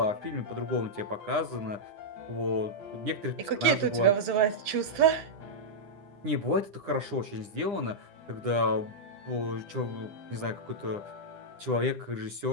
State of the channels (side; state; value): left; late; 10 ms